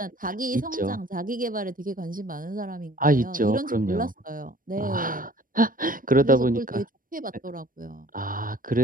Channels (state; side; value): late; left; 0.40 ms